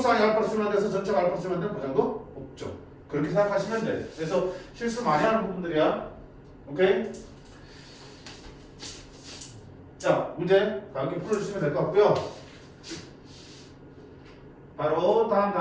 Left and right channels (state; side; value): identical; both; correlation 1.00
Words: 알파로 수렴한다 해서 전체가 알파로 수렴한다는 보장도 없죠. 그렇게 생각하시면 돼. 그래서 실수 많이 하는 부분들이야. 오케이? 자, 문제 가볍게 풀어주시면 될 것 같고요. 바로 다음